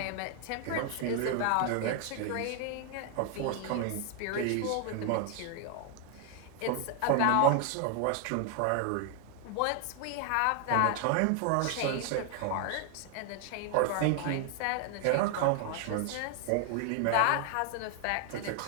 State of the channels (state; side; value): different; both; correlation 0.00